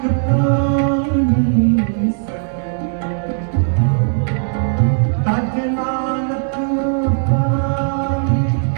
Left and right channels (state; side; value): silent; left; 68 dB below the other